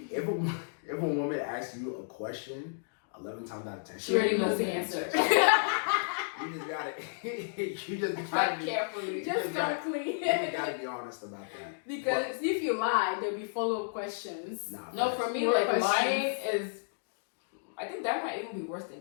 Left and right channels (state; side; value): silent; right; digital silence